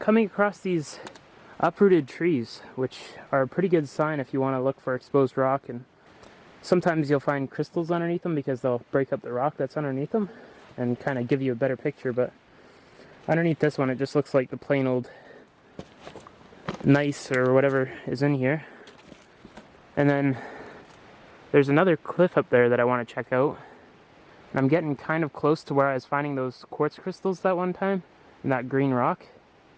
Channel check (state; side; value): identical; both; correlation 1.00